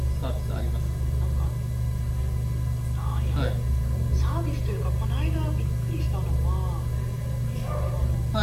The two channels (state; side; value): identical; both; correlation 1.00